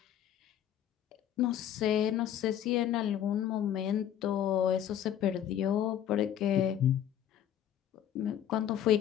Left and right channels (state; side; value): quieter; right; 10.4 dB